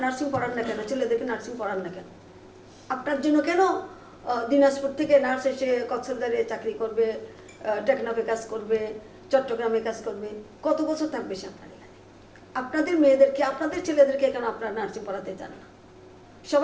নার্সিং পড়ান না কেন, ছেলেদেরকে নার্সিং পড়ান না কেন? আপনার জন্য কেন দিনাজপুর থেকে নার্স এসে কক্সবাজারে চাকরি করবে, টেকনাফে কাজ করবে, চট্টগ্রামে কাজ করবে, কত বছর থাকবে সে আপনার এখানে? আপনাদের মেয়েদেরকে, আপনাদের ছেলেদেরকে কেন আপনারা নার্সিং পড়াতে চান না?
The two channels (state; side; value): identical; both; correlation 1.00